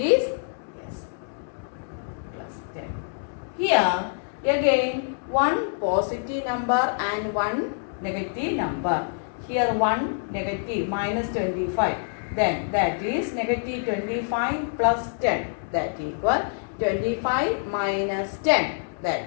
yes plus 10. Here again one positive number and one negative number. Here one negative minus 25. Then that is negative 25 plus 10. That equal 25 minus 10.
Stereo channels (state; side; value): silent; right; digital silence